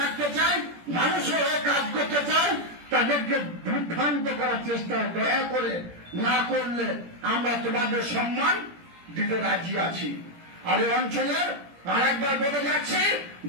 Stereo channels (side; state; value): left; late; 17 ms